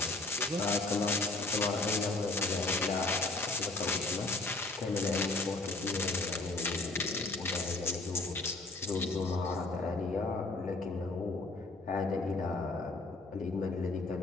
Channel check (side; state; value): right; quieter; 3.2 dB